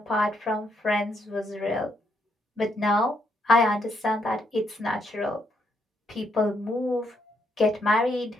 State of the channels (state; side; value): normal; both; correlation 0.75